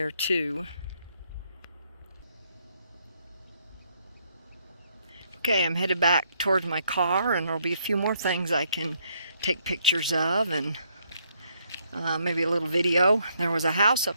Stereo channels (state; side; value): inverted; both; correlation -0.72